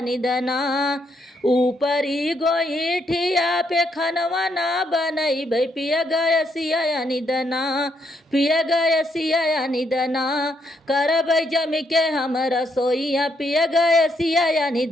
ऊपरी गोईठिया पे खनवा ना बनैबै पिया गैसिया या निदना, पिया गैसिया या निदना, करबै जमी के हम रसोइया पिया गैसिया या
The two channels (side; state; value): both; normal; correlation 0.76